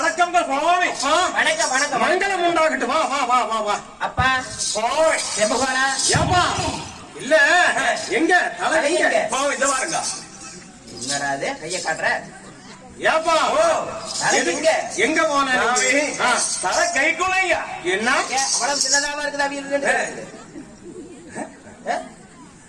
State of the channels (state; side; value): identical; both; correlation 1.00